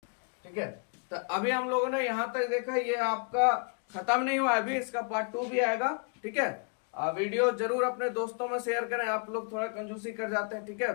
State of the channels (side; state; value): right; quieter; 38.3 dB